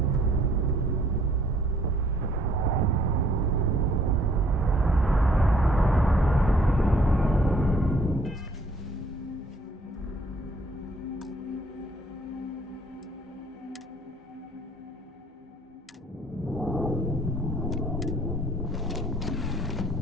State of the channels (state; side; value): normal; both; correlation 0.61